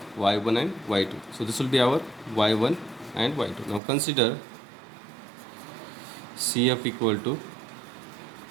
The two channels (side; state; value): left; drops out; at 3.8 s